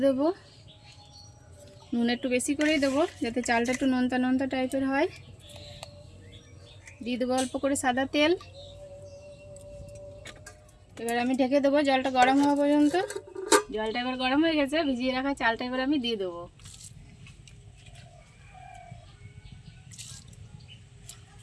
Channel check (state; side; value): identical; both; correlation 1.00